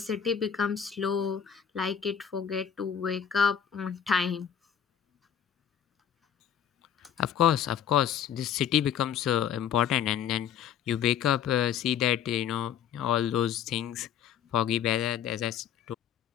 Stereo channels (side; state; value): right; quieter; 8.8 dB